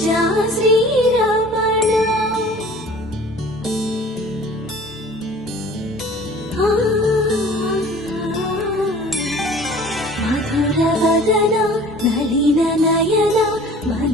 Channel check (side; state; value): both; normal; correlation 0.47